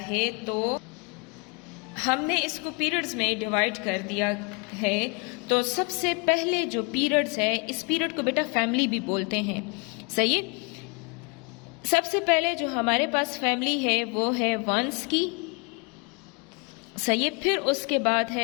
है, तो हमने इसको पीरियड्स में डिवाइड कर दिया है, तो सबसे पहले जो पीरियड्स है, इस पीरियड को बेटा फैमिली भी बोलते हैं। सही। सबसे पहले जो हमारे पास फैमिली है वो है वंस की। सही। फिर उसके बाद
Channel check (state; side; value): quieter; right; 31.9 dB